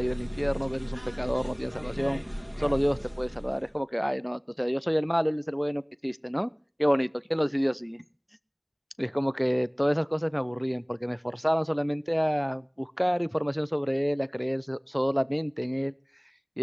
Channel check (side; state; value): both; identical; correlation 1.00